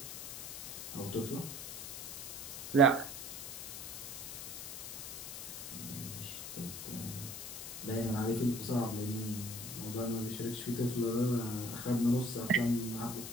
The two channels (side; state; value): left; noise; hiss, 8 dB below the sound